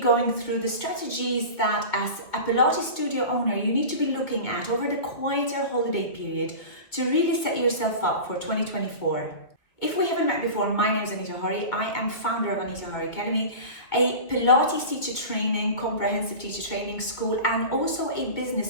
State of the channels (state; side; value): late; right; 2.4 ms